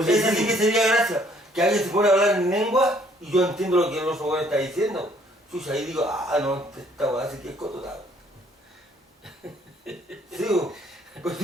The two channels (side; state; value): both; normal; correlation 0.63